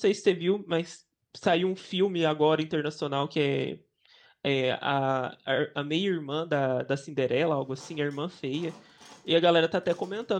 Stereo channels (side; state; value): both; identical; correlation 1.00